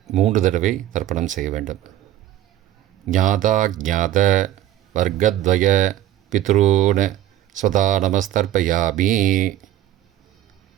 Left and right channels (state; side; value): quieter; left; 12.9 dB